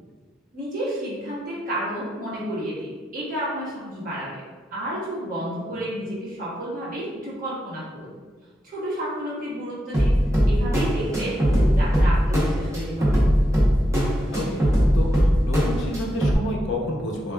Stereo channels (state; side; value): normal; both; correlation 0.85